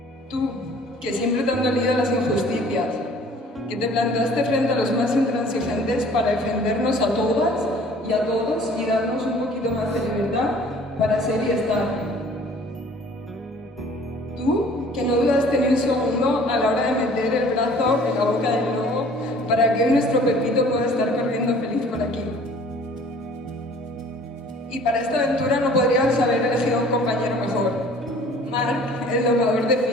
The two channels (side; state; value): both; normal; correlation 0.51